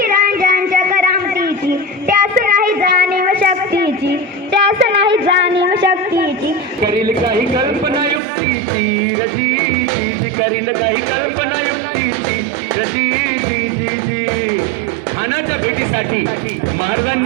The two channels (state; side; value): drops out; left; at 8.2 s